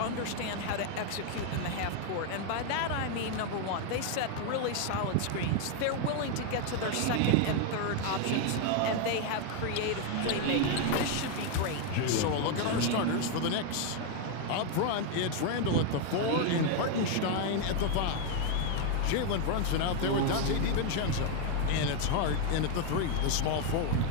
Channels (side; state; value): both; different; correlation 0.01